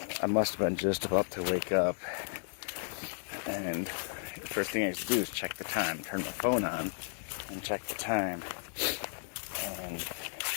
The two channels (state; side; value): silent; right; 55 dB below the other